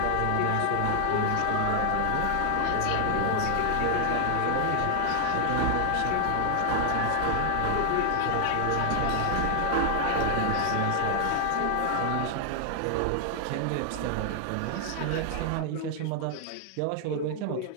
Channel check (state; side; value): different; both; correlation 0.00